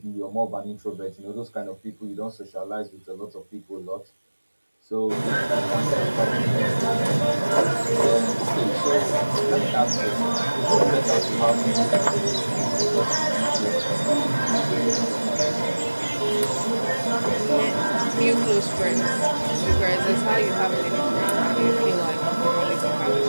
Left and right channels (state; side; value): inverted; both; correlation -1.00